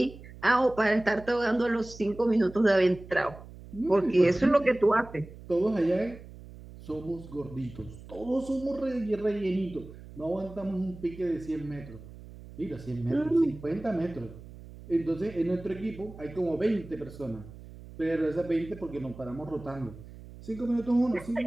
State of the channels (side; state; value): right; noise; hum, 17 dB below the sound